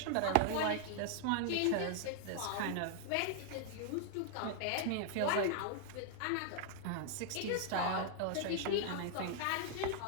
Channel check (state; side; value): different; both; correlation 0.00